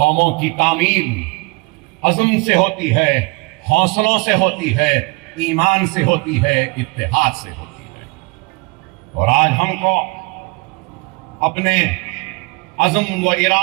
کی تعمیر عزم سے ہوتی ہے, حوصلوں سے ہوتی ہے, ایمان سے ہوتی ہے, اتحاد سے ہوتی ہے. اور آج ہم کو اپنے عزم و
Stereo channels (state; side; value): quieter; left; 27.5 dB